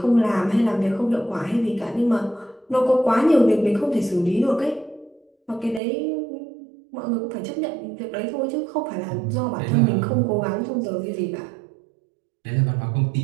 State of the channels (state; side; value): drops out; left; at 5.8 s